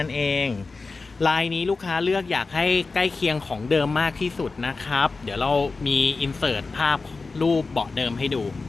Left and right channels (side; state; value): right; quieter; 3.9 dB